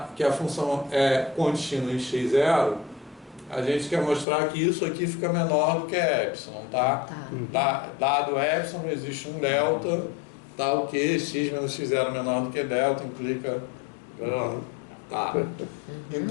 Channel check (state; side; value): drops out; right; at 4.2 s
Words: que a função é contínua em x0, a gente quer mostrar que isso aqui fica menor do que epsilon, tá? Dado epsilon, existe um delta, tá? O que x menos x0 menor do que delta implica... Tá.